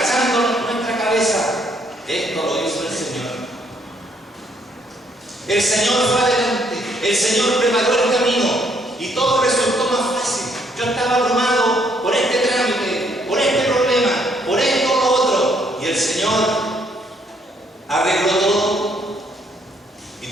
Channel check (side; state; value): both; normal; correlation 0.69